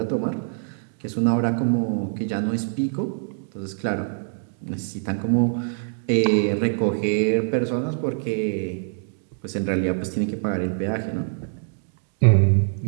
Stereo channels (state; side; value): silent; left; digital silence